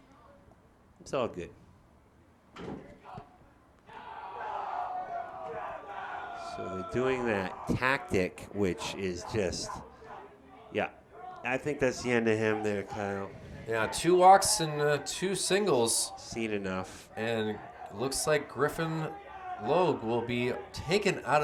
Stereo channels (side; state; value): both; identical; correlation 1.00